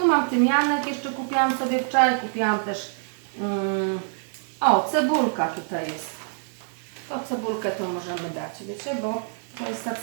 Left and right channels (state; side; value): silent; left; 58 dB below the other